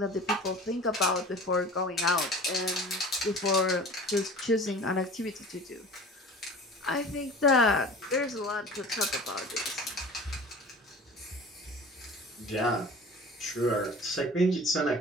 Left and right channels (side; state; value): both; normal; correlation 0.40